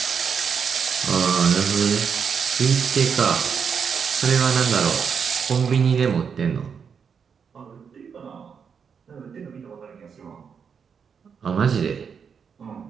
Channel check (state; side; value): quieter; left; 6.6 dB